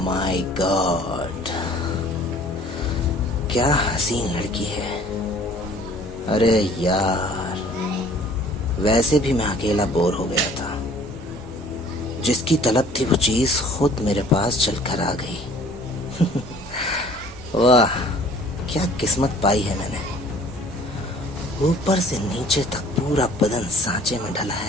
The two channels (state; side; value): normal; both; correlation 0.52